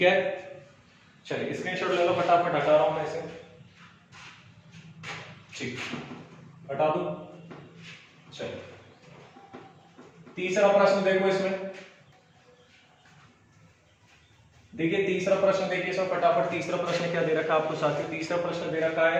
है, चलिए स्क्रीनशॉट ले लो, फटाफट हटा रहा हूं मैं इसे, ठीक हटा दूं। चलिए तीसरा प्रश्न देखो, इसमें देखिए तीसरा प्रश्न, देखिए इसमें फटाफट तीसरा प्रश्न क्या दे रखा है आपको साथियों, तीसरा प्रश्न दे रखा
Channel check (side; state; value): both; identical; correlation 1.00